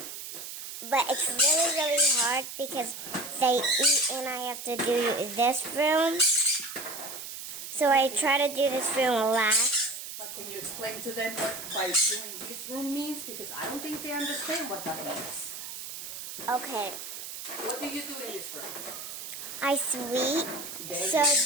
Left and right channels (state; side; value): noise; right; hiss, 9 dB below the sound